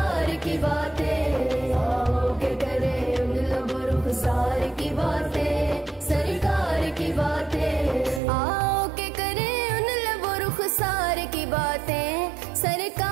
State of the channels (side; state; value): left; drops out; at 8.2 s